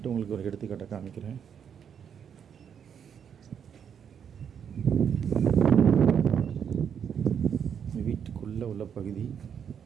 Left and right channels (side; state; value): left; quieter; 7.9 dB